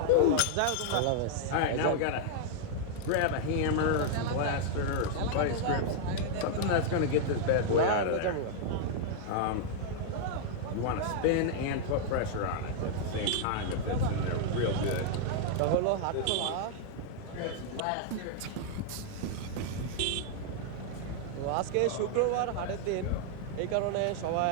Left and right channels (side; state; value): both; different; correlation -0.01